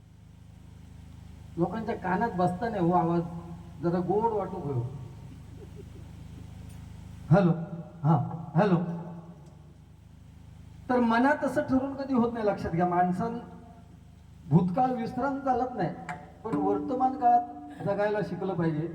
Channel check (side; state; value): both; identical; correlation 1.00